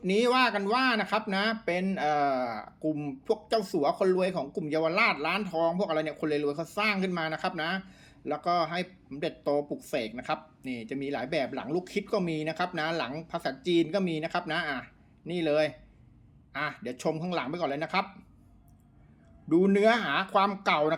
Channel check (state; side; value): identical; both; correlation 1.00